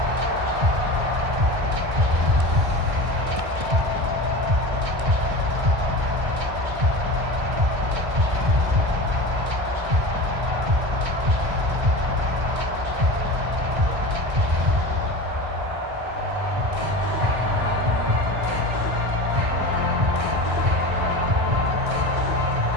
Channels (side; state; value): left; late; 1.6 ms